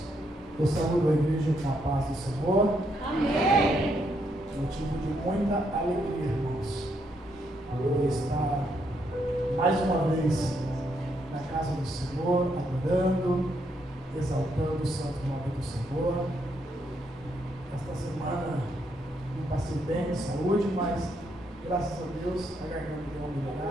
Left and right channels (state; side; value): normal; both; correlation 0.76